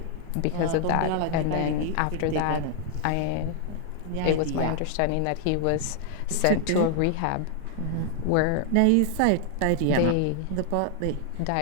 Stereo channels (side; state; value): both; different; correlation 0.00